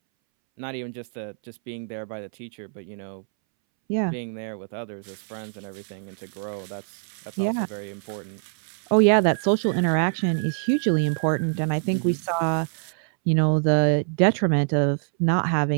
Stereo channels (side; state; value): left; silent; 62 dB below the other